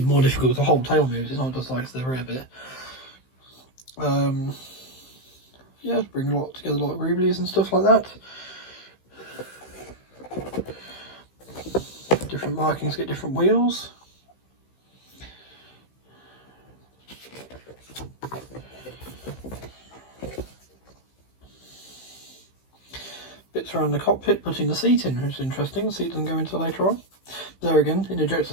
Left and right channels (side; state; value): right; late; 15 ms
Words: more difficult. The whole tail moves, it's not just like the rear bit. Yeah, bring a lot together, a lot of greeblies and stuff like that. Different markings get different wheels. Bits around the cockpit, putting the seat in, which is interesting. The seat doesn't go into later on. There again, an ejector